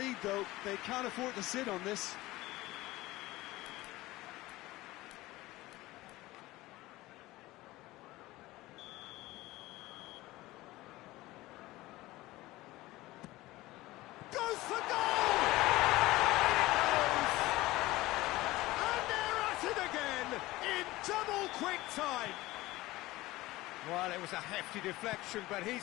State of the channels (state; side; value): quieter; right; 18.6 dB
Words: though. They can't afford to sit on this. Goes for goal! And they're at it again in double quick time. Well, it was a hefty deflection, but